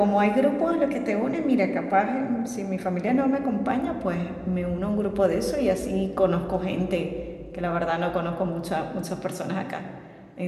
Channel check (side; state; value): both; identical; correlation 1.00